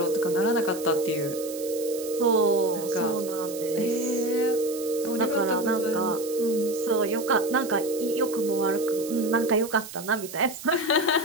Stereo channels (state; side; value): noise; right; hiss, 13 dB below the sound